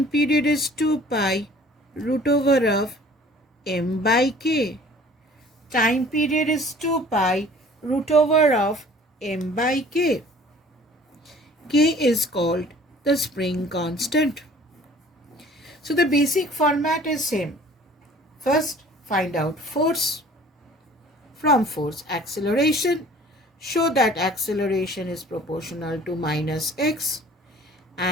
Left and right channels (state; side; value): normal; both; correlation 0.50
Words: period is 2 pi root over of m by k. Time period is 2 pi root over of m by k. K is called the spring constant. So the basic format is same. First, find out force. From force, acceleration. Show that acceleration is proportional to minus x,